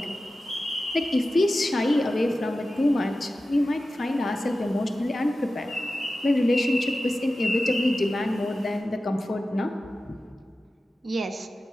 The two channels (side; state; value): both; normal; correlation 0.94